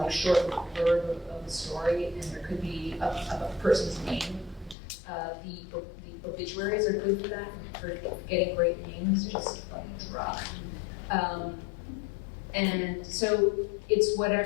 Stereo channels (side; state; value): right; drops out; at 4.8 s